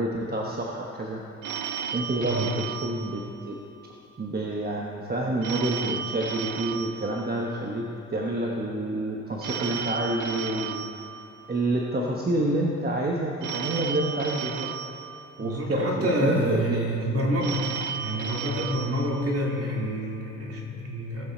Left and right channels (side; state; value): both; normal; correlation 0.38